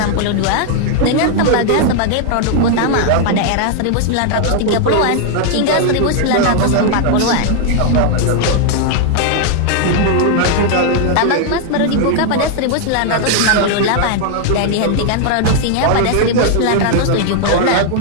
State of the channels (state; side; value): different; both; correlation 0.00